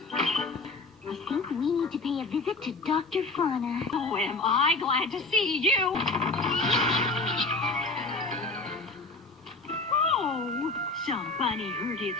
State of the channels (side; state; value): right; quieter; 3.4 dB